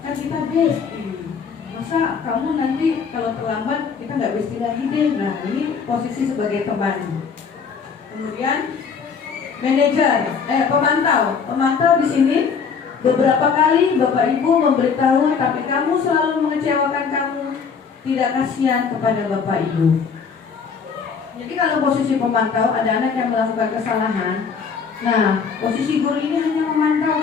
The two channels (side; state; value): right; quieter; 5.9 dB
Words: kan kita bestie. Masa kamu nanti kalau terlambat kita nggak bestie lagi deh. Nah, ini posisi sebagai teman. Kemudian manajer, pemantau di sini beberapa kali Bapak Ibu memberitahu, tapi kamu selalu mengecewakan kamu, tidak kasihan kepada Bapak Ibu. Jadi kalau posisi pemantau ada anak yang melakukan kesalahan, nah posisi guru ini hanya memantau